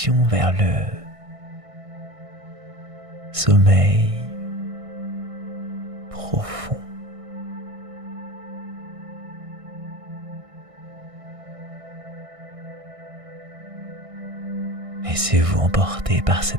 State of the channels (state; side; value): late; left; 1.6 ms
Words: vers le sommeil profond. Laissez-vous emporter par